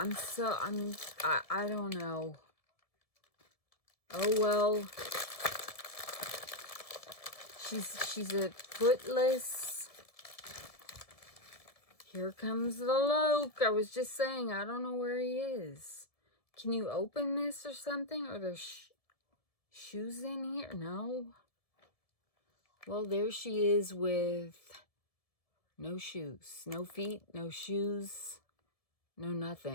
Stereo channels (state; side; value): late; right; 1.7 ms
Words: don't know. Oh, well. She's a footless. Here comes the Loke. I was just saying, I don't know where he is. Can you open this or something? Are there shoes in here? No. Well, there she is with no shoes. No feet, no shoes, no